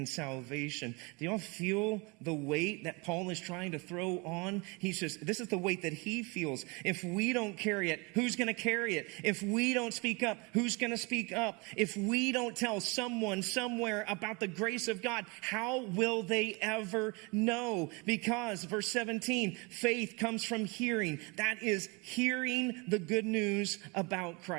salvation. Do y'all feel the weight that Paul is trying to throw on? This is the weight that he feels. If we don't carry it, who's going to carry it? If we don't speak up, who's going to speak up? If we don't tell someone somewhere about the grace of God, how will they ever know? Because, verse 17, faith comes from hearing. That is hearing the good news about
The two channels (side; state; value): left; quieter; 28.5 dB